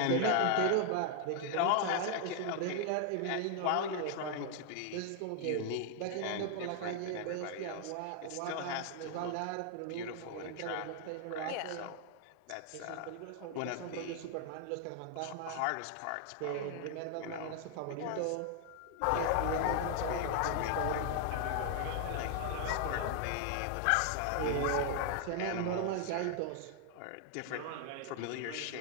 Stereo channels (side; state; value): both; different; correlation 0.00